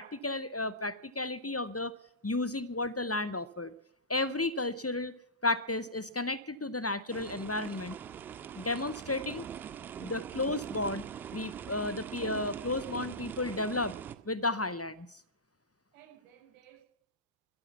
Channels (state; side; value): normal; both; correlation -0.17